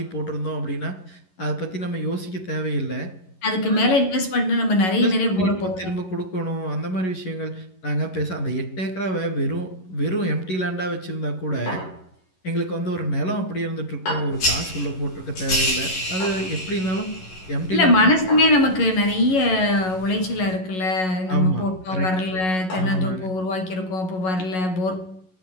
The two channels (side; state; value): right; late; 11 ms